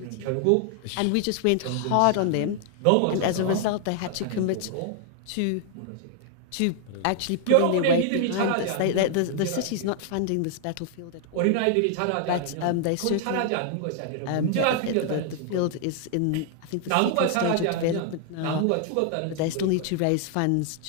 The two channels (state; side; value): different; both; correlation 0.00